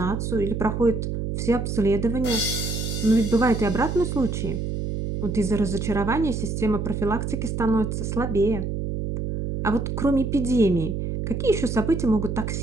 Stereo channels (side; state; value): right; noise; hum, 3 dB below the sound